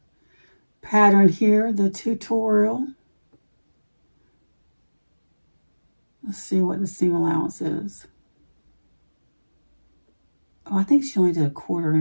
pattern here, the tutorial. Let's see what the seam allowance is. Oh, I think she only did a 1/4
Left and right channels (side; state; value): both; inverted; correlation -1.00